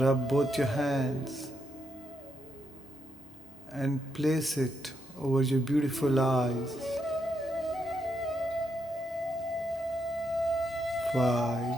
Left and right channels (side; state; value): both; normal; correlation 0.81